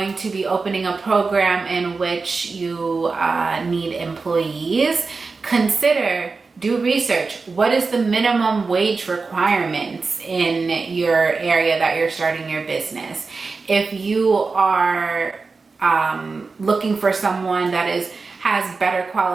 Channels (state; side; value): quieter; left; 4.3 dB